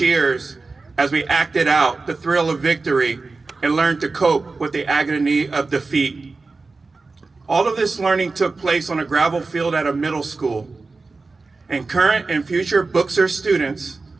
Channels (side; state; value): left; quieter; 3.9 dB